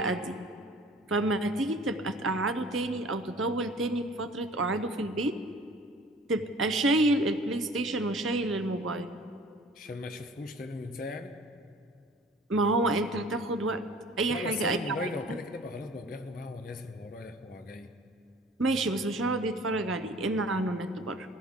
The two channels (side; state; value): both; normal; correlation 0.49